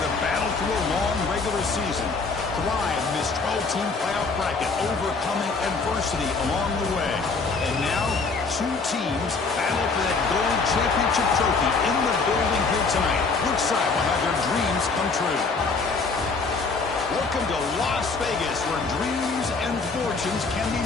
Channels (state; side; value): quieter; right; 4.3 dB